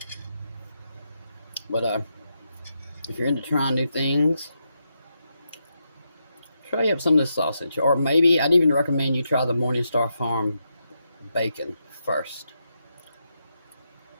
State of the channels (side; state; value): both; inverted; correlation -0.83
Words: But if you're into trying new things, try up some of this sausage. Or maybe I'd even recommend you try the Morningstar Farm bacon first.